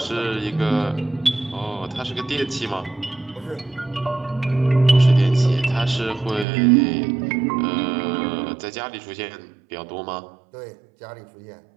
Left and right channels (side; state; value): left; drops out; at 6.5 s